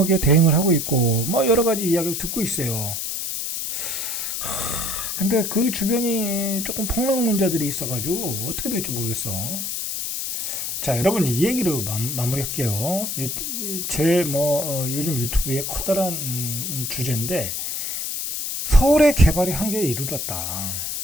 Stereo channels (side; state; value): left; noise; hiss, 3 dB below the sound